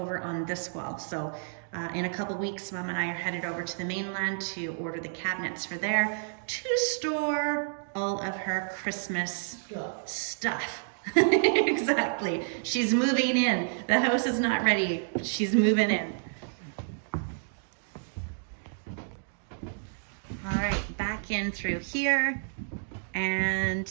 on this wall. So in a couple weeks, Mom and I are headed over to the mainland to order the cabinets for there to store all of her Christmas stuff. Exactly. She's moving in. The house is not ready. She's moving in. All right, back in through here. And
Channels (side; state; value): left; silent; digital silence